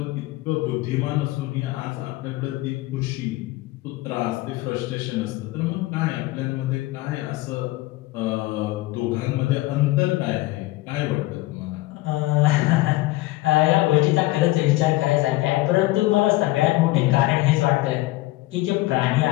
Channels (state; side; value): quieter; right; 19.0 dB